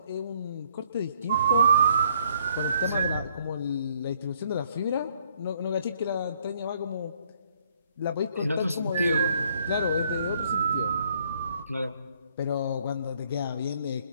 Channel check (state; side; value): inverted; both; correlation -0.65